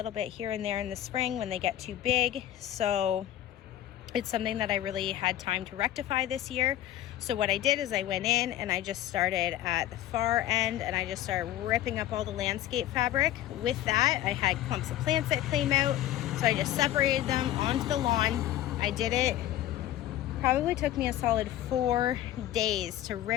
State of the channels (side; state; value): right; quieter; 13.1 dB